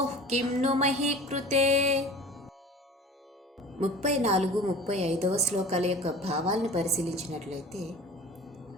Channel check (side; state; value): both; normal; correlation 0.40